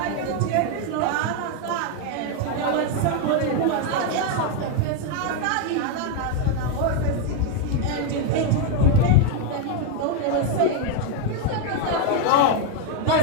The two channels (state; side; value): different; both; correlation 0.01